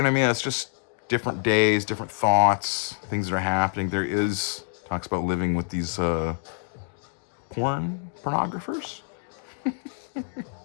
know what I mean? It's just different days, different thoughts, things that are happening. Talks about living with these pornographers.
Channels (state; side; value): silent; right; 61 dB below the other